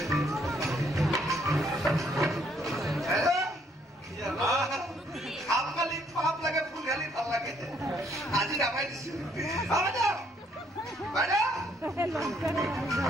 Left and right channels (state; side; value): normal; both; correlation 0.68